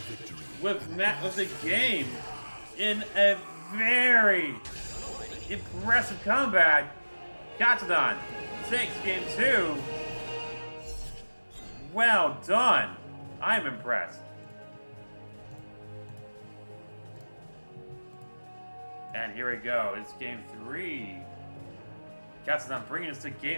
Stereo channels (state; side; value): inverted; both; correlation -1.00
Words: with the game in a very impressive comeback. Katsudan takes game 2. Well done. I'm impressed. And here we go. It's game 3. Katsudan bringing us to